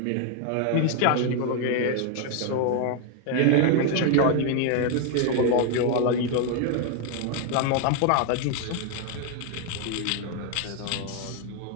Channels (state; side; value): different; both; correlation 0.01